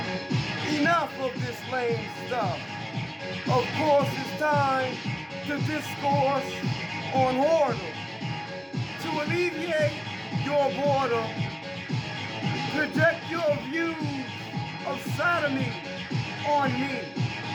enough of this lame stuff. Of course, it's time to discourse on whoredom. To alleviate your boredom, project your views of sodomy on me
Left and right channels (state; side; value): identical; both; correlation 1.00